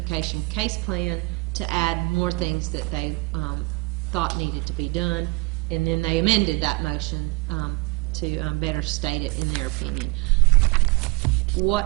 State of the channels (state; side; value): quieter; left; 24.1 dB